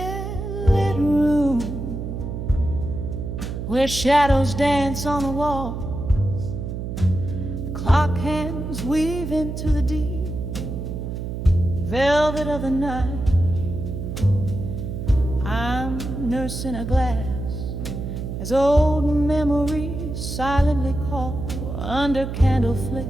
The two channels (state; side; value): noise; right; hum, 5 dB below the sound